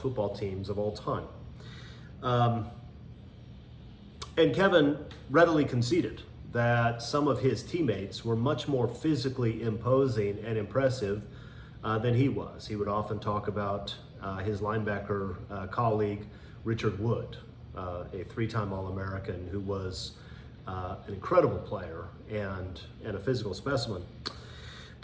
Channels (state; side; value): identical; both; correlation 1.00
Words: teams of all time. And Kevin readily conceded that some of his teammates were much more physically imposing and impressive than he was. He would often talk about his linebacker colleague, Richard Wood, a 3-time All-American who was an incredible player and a physical specimen.